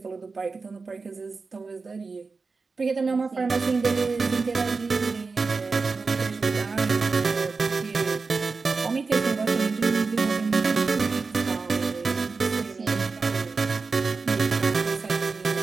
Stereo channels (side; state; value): left; quieter; 4.3 dB